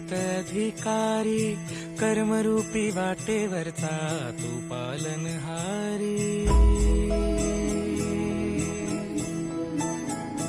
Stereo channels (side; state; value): both; identical; correlation 1.00